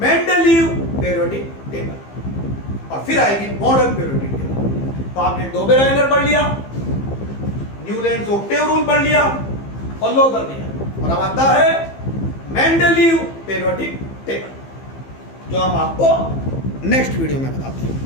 Mendeleev periodic table, और फिर आएगी मॉडर्न पीरियोडिक टेबल। तो आपने डोबेराइनर पढ़ लिया, न्यूलैंड्स ऑक्टेव रूल पढ़ लिया और लोथर मेयर, और अब आता है मेंडलीव पीरियोडिक टेबल, जो हम आपको नेक्स्ट वीडियो में बताते हैं।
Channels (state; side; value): late; right; 15 ms